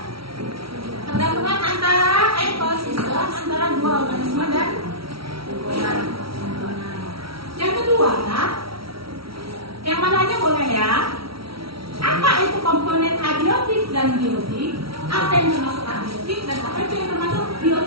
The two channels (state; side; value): late; left; 0.75 ms